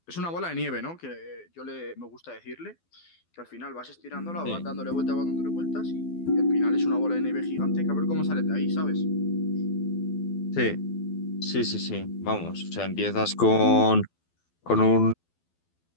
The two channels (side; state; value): right; late; 12 ms